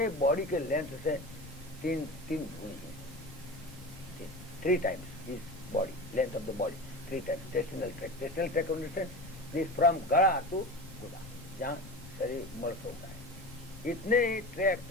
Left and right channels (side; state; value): left; noise; rumble, 16 dB below the sound